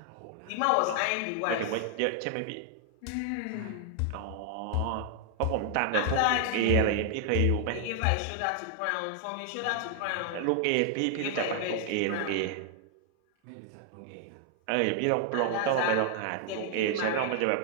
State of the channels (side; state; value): both; different; correlation 0.00